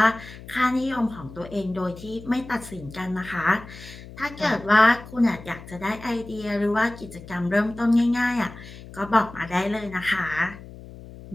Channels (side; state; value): left; noise; hum, 16 dB below the sound